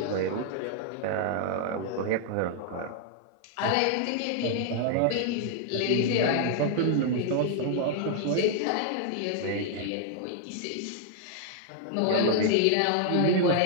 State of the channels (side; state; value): both; different; correlation 0.00